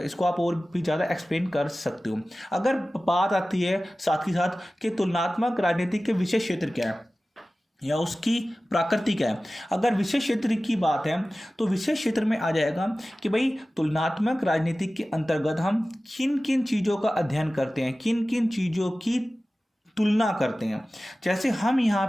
आप और भी ज़्यादा एक्सप्लेन कर सकते हो। अगर बात आती है साथ ही साथ कि तुलनात्मक राजनीति के विषय क्षेत्र क्या है या उसकी प्रकृति क्या है। अगर विषय क्षेत्र की बात है तो विषय क्षेत्र में आ जाएगा कि भाई तुलनात्मक राजनीति के अंतर्गत हम किन किन चीज़ों का अध्ययन करते हैं, किन किन चीज़ों की तुलना करते हैं। जैसे हम यहाँ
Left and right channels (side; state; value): both; normal; correlation 0.96